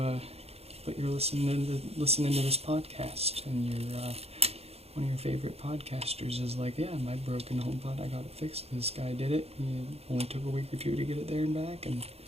but you're listening to this podcast, and one of your favorite podcasters is like, yeah, my broken HomePod, I got it fixed. This guy did it. He only took a week or two to get it there and back, and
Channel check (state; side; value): late; left; 0.29 ms